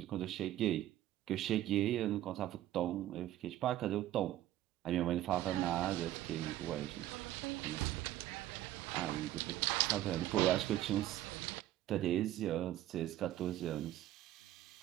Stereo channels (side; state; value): left; quieter; 13.9 dB